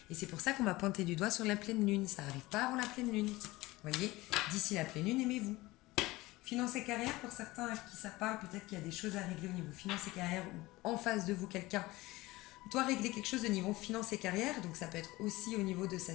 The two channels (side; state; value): right; quieter; 19.9 dB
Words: Et c'est pour ça qu'on m'a pointé du doigt sur la pleine lune. Ça n'arrive pas avant la pleine lune. Vous voyez, d'ici la pleine lune, aimez-vous. Finance et carrière, pour certains à qui ça parle, peut-être qu'il y a des choses à régler au niveau finance et carrière ou en face de vous, quelqu'un doit régler quelque chose de niveau finance et carrière. Donc ça peut être aussi au niveau de sa